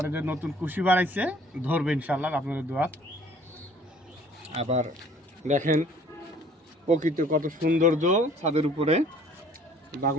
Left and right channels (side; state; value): both; normal; correlation 0.55